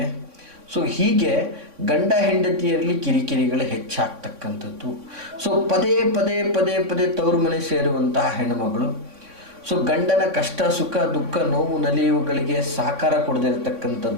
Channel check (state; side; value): late; left; 3.6 ms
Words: ಸೊ ಹೀಗೆ ಗಂಡ ಹೆಂಡತಿಯರಲ್ಲಿ ಕಿರಿಕಿರಿಗಳು ಹೆಚ್ಚಾಗ್ತಕ್ಕಂಥದ್ದು. ಸೊ ಪದೇ ತವ್ರ ಮನೆ ಸೇರುವಂತಹ ಹೆಣ್ಣುಮಗಳು. ಸೊ ಗಂಡನ ಕಷ್ಟ, ಸುಖ, ದುಃಖ, ನೋವು, ನಲಿವುಗಳಿಗೆ ಸಹಕಾರ